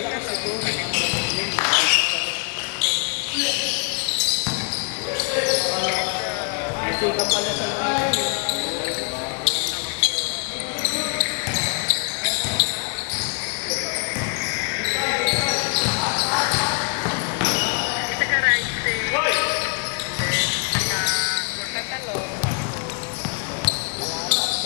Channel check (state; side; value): quieter; right; 38.3 dB